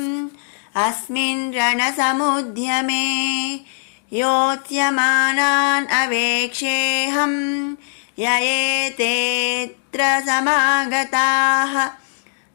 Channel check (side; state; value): right; silent; digital silence